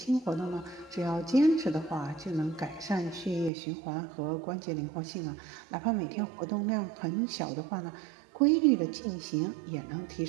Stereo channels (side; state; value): left; drops out; at 3.5 s